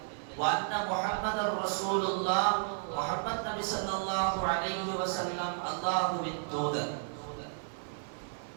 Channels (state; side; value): silent; left; digital silence